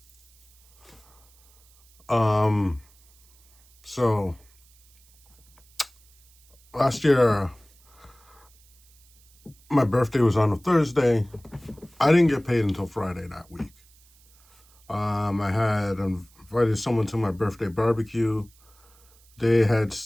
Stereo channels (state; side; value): noise; right; hiss, 30 dB below the sound